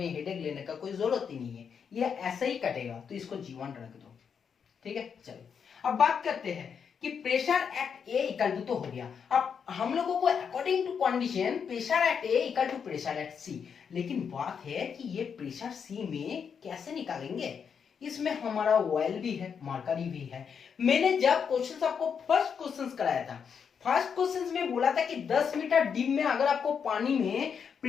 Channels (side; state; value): right; quieter; 6.8 dB